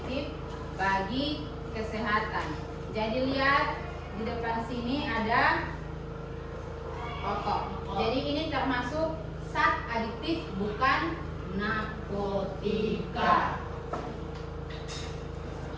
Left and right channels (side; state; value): both; identical; correlation 1.00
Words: bagi kesehatan. Jadi lihat di depan sini ada rokok. Jadi ini termasuk zat adiktif, bukan narkotika.